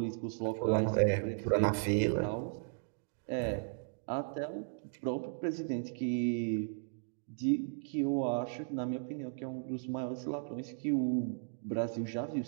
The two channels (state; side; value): silent; left; digital silence